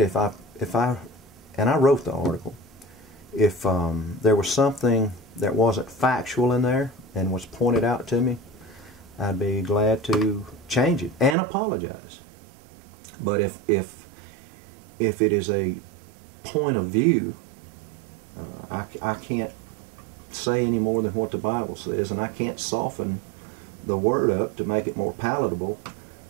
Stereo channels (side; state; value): left; drops out; at 11.4 s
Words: I and I wrote the article, if there was something that wasn't factual in there and was pointed out to me, I'd be glad to change it and apologize. But if if it is a point of view, I can't say any more than what the Bible says, and I can't soften the Word up to make it more palatable